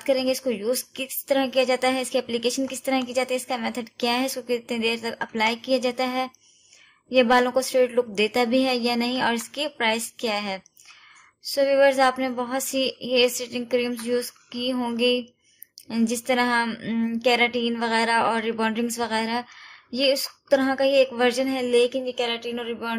करेंगे। इसको यूज किस तरह किया जाता है, इसकी एप्लीकेशन किस तरह की जाती है, इसका मेथड क्या है, इसको कितनी देर तक अप्लाई किया जाता है, ये बालों को स्ट्रेट लुक देता भी है या नहीं, और इसकी प्राइस क्या है। सो व्यूअर्स, आपने बहुत see here straightening creams use की होंगी, जिस तरह केराटिन वगैरह और रिबॉन्डिंग्स वगैरह। ये उस तरह का ही एक वर्जन है, लेकिन ये केराटिन और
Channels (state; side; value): identical; both; correlation 1.00